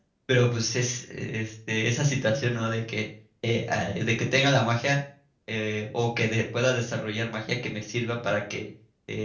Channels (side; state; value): both; identical; correlation 1.00